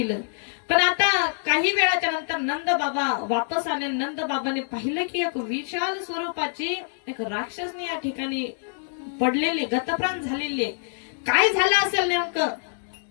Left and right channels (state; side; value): silent; right; digital silence